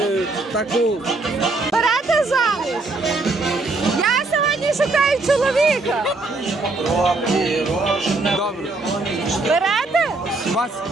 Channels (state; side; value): quieter; left; 3.3 dB